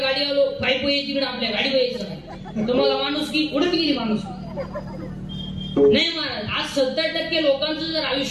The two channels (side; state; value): both; identical; correlation 1.00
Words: गाडी आलो पायप तिकडे आपल्या गाडी यायचं नाही. तुम्हाला माणूस की उडत गेली माणूस नाही महाराज. आज 70% लोकांचं जर